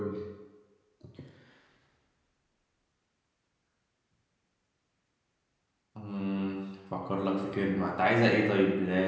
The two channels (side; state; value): both; identical; correlation 1.00